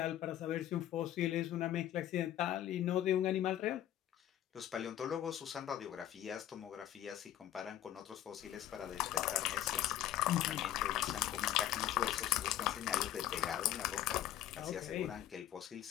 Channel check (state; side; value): quieter; right; 12.3 dB